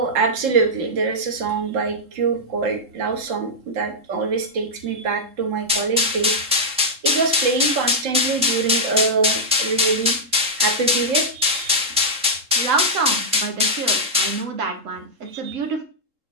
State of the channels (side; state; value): left; late; 3.7 ms